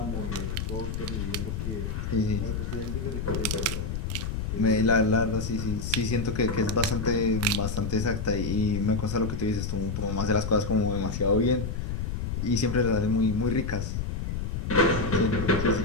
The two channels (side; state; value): left; noise; rumble, 3 dB below the sound